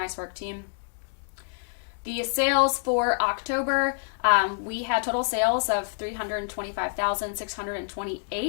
work, team. The sales for October, we had total sales of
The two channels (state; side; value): silent; right; digital silence